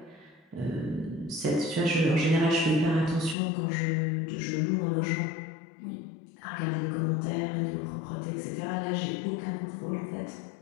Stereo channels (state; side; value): drops out; right; at 3.4 s